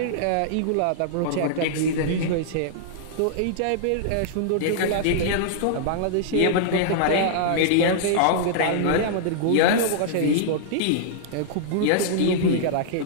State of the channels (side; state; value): both; different; correlation -0.02